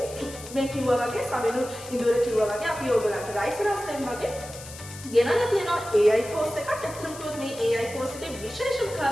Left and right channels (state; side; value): noise; left; hiss, 15 dB below the sound